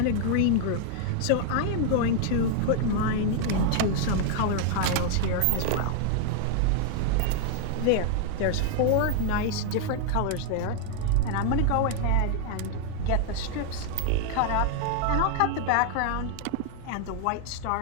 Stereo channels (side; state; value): both; different; correlation 0.00